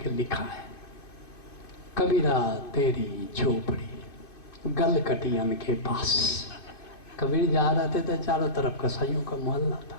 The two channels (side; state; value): right; late; 2.5 ms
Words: लिखा है, कबीरा तेरी झोपड़ी गल कटियन के पास। कबीर जा रहे थे तो चारों तरफ कसाईयों का मोहल्ला था।